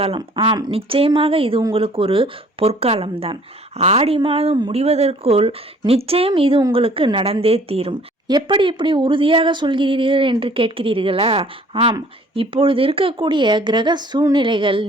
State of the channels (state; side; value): normal; both; correlation 0.55